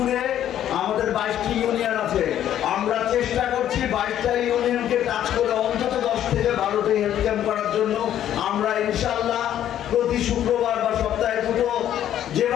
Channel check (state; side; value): quieter; right; 11.2 dB